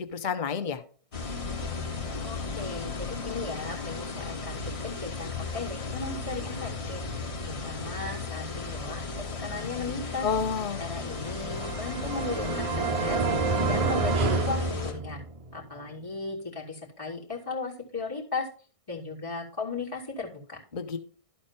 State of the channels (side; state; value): left; late; 1.6 ms